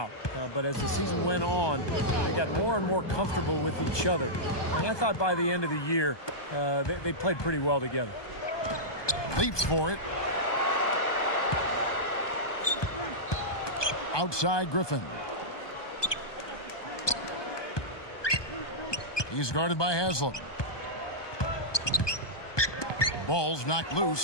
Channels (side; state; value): right; late; 1.2 ms